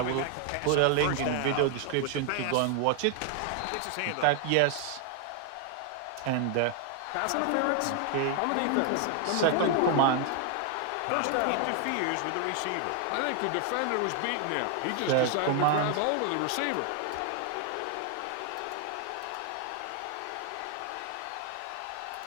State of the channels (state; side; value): different; both; correlation 0.00